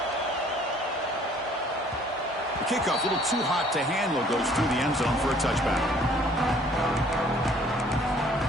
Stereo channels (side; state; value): both; normal; correlation 0.57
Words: The kickoff, a little too hot to handle, goes through the end zone for a touchback.